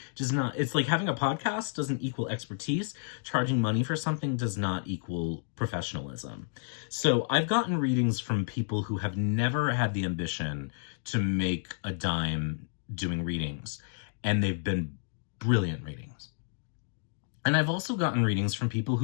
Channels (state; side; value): silent; right; digital silence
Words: does not, it's like having a podcast doesn't equal expertise. Charging money for something does not equal professionalism. So I've gotten readings from people who have never had the ambition to make a dime doing readings, and they've been brilliant readings. And I've also gotten readings from people